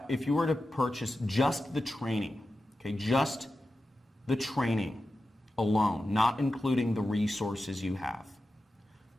were to purchase just the training, okay, just the training alone, not including the resources you have,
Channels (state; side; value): normal; both; correlation 0.92